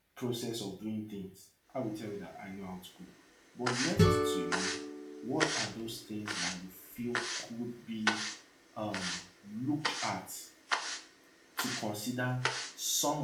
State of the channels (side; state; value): both; identical; correlation 1.00